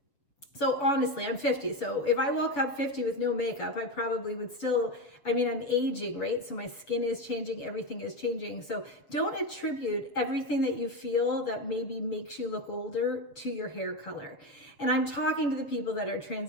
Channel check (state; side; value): late; right; 6.9 ms